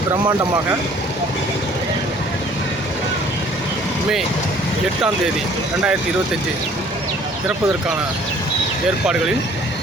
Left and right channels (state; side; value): normal; both; correlation 0.55